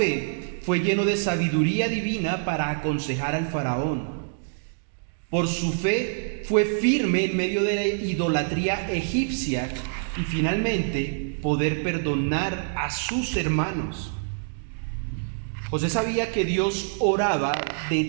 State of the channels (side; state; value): left; silent; digital silence